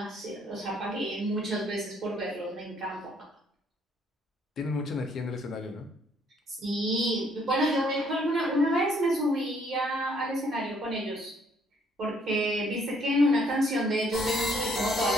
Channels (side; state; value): both; normal; correlation 0.66